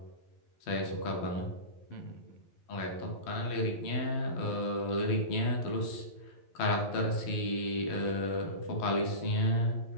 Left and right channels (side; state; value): right; late; 11 ms